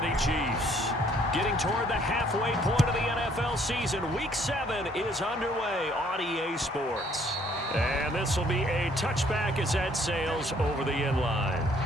Chiefs. Getting toward the halfway point of the NFL season, Week 7 is underway on EA Sports. And this will be a touchback as that sails over the end line.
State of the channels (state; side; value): normal; both; correlation 0.63